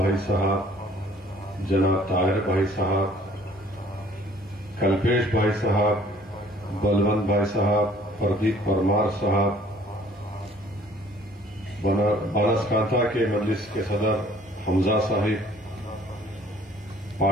साहब, जनाब ताहिर भाई साहब, कल्पेश भाई साहब, बलवंत भाई साहब, प्रदीप परमार साहब, बनासकांठा के मजलिस के सदर हमजा साहिब,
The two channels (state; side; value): normal; both; correlation 0.56